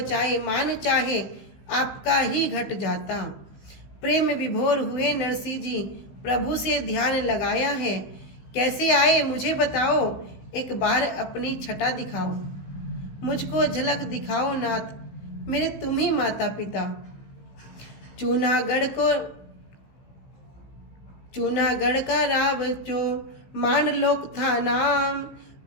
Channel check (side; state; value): right; late; 15 ms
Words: मान चाहे, आपका ही घट जाता। प्रेम विभोर हुए नरसिंह जी, प्रभु से ध्यान लगाया है। कैसे आए मुझे बताओ, एक बार अपनी छटा दिखाओ। मुझको झलक दिखाओ नाथ, मेरे तुम ही माता पिता। चूनागढ़ का राव जो मान लोक था नाम।